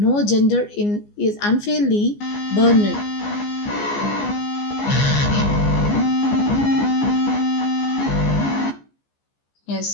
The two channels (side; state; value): right; late; 14 ms